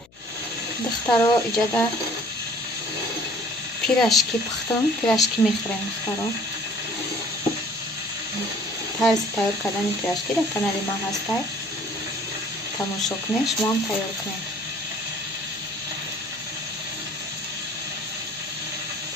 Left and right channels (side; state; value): left; noise; hum, 29 dB below the sound